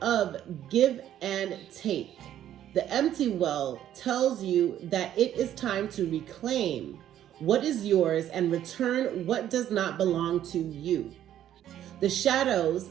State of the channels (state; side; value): quieter; left; 11.3 dB